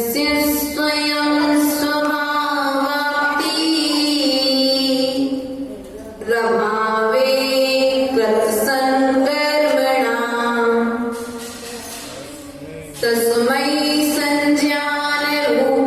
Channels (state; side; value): identical; both; correlation 1.00